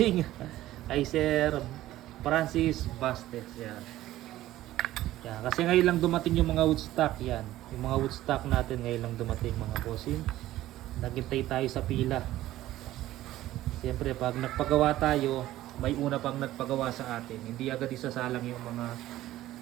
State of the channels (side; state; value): left; quieter; 14.9 dB